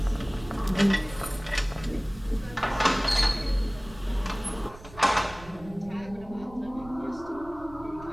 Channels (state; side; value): noise; right; rumble, 19 dB below the sound